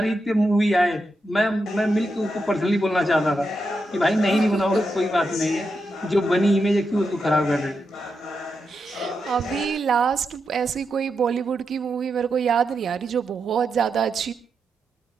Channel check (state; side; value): normal; both; correlation 0.86